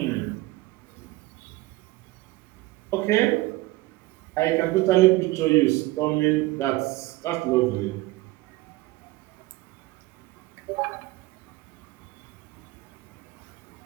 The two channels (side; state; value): left; quieter; 19.3 dB